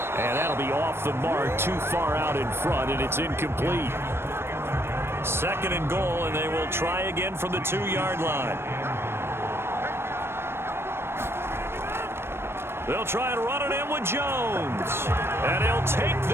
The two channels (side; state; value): left; late; 0.12 ms